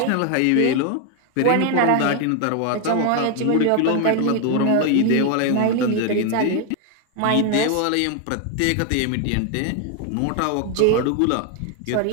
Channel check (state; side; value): different; both; correlation 0.01